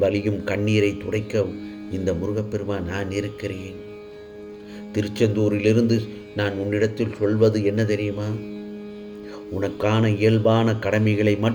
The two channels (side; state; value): both; identical; correlation 1.00